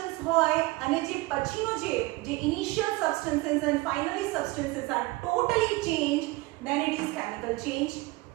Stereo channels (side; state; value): left; quieter; 21.8 dB